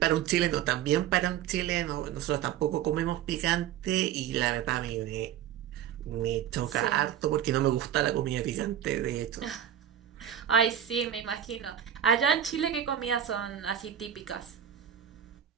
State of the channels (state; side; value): quieter; left; 10.2 dB